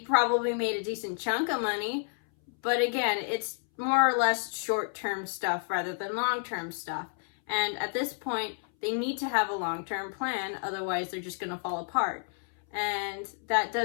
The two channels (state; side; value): silent; right; 58 dB below the other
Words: made a decent chunk of money, but again, it's more or less short-term stuff rather than long-term stuff. And at this point, they need to have a long-term plan, otherwise they're just going to fall apart. And that